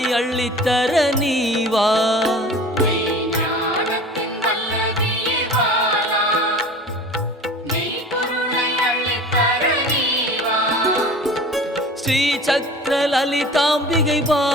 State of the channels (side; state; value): both; normal; correlation 0.40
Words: அள்ளித்தர நீவா ஸ்ரீ சக்கர லலிதாம்பிகை